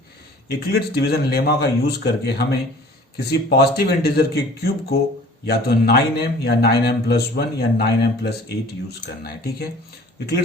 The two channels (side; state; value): both; normal; correlation 0.48